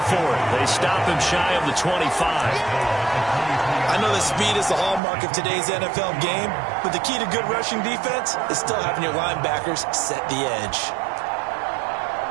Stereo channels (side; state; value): left; drops out; at 5.0 s